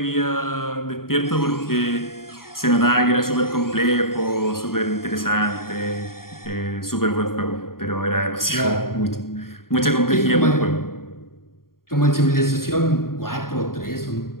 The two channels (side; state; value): right; late; 0.92 ms